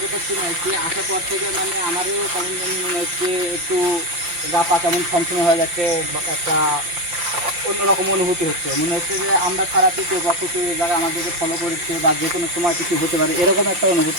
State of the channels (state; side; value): late; left; 5.7 ms